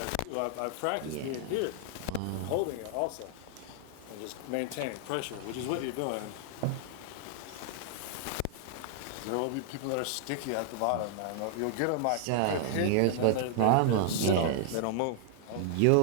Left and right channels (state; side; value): different; both; correlation 0.00